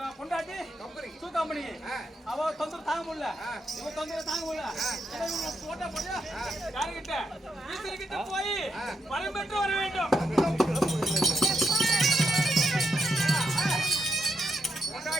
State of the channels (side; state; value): both; normal; correlation 0.83